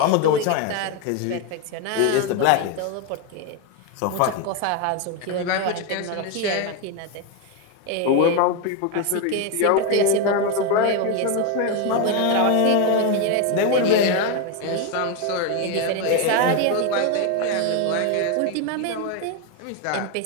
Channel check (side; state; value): both; different; correlation 0.02